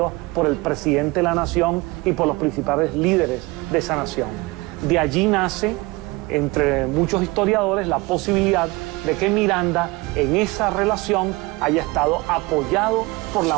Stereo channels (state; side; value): quieter; left; 23.3 dB